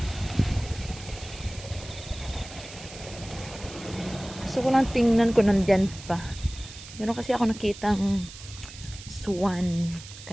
Gusto ko lang tingnan ko nandyan pa. Meron kasi ako nakitang swan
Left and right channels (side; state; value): right; noise; hiss, 15 dB below the sound